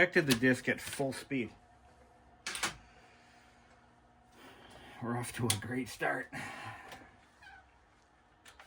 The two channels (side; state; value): both; identical; correlation 1.00